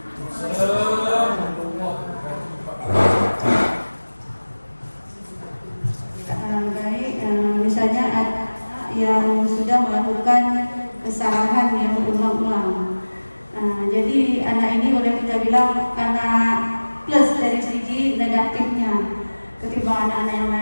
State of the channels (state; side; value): inverted; both; correlation -1.00